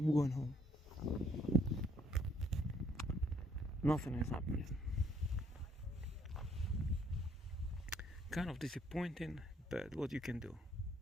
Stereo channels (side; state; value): both; normal; correlation 0.67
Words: going home. Nothing is happening. Kind of disappointing, but what you can do?